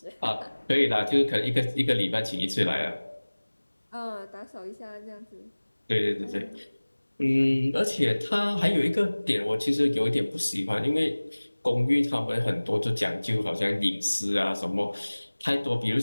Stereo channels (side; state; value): both; inverted; correlation -1.00